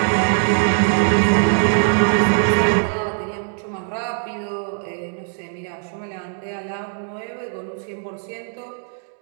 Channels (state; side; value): silent; left; 65 dB below the other